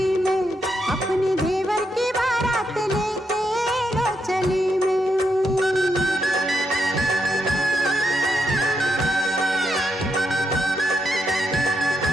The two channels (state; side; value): normal; both; correlation 0.81